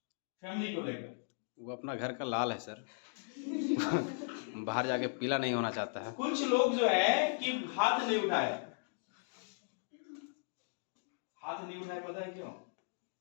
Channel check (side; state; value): right; silent; digital silence